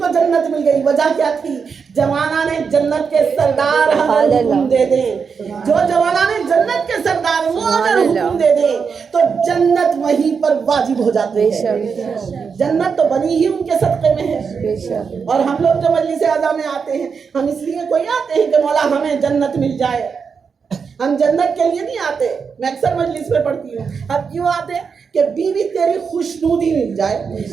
جنت مل گئی. وجہ کیا تھی؟ جوانا نے جنت کے سردار اگر حکم دے دیں، جو جوانا نے جنت کے سردار وہ اگر حکم دے دیں تو جنت وہیں پر واجب ہو جاتی ہے. جنت تو بنی ہی ان کے صدقے میں ہے. اور ہم لوگ جو مجلس اعلیٰ میں آتے ہیں ہم اس لیے کوئی آتے ہیں کہ مولا ہمیں جنت مل جائے. ہم جنت کے لیے نہیں آتے. میں اکثر مجلس میں پڑھتی ہوں اب کیوں آتے کہ بیوی تیری خوشنودی مل جائے،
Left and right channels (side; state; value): left; quieter; 5.9 dB